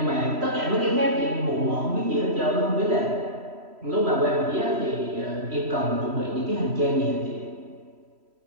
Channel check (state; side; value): late; left; 3.1 ms